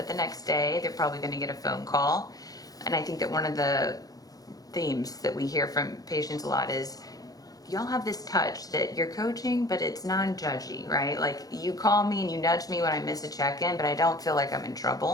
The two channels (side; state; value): right; late; 0.18 ms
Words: the next day they're probably going to get a phone call. And I think that one of the themes that we hear from patients a lot is, y'all have this touch that you're coaching, but it's non-judgy, right? Like you call me and you nudge me when I miss a check-in, but I don't feel like I'm in